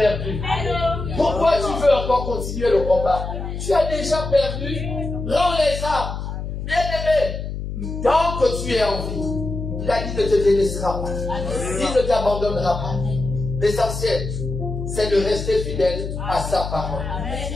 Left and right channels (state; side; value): noise; left; hum, 6 dB below the sound